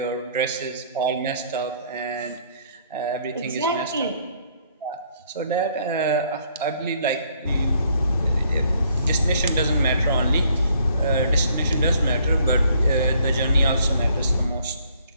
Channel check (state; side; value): inverted; both; correlation -0.65